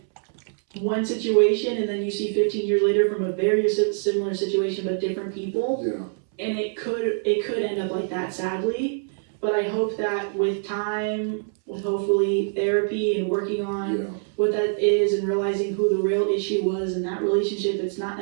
one situation and then you see 15 years later from a very similar situation but different people. Yeah. And it could end up like that, sadly. But I hope that with time, with hopefully therapy and working on what that is and realizing who the real issue was in that relationship, it's not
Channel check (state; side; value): silent; left; 62 dB below the other